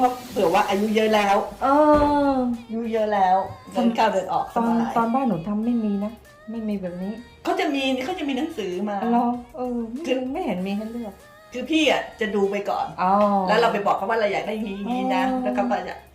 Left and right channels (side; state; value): both; identical; correlation 1.00